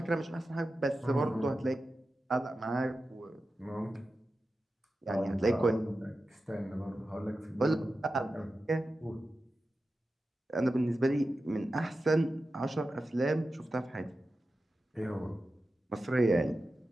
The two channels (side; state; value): both; normal; correlation 0.92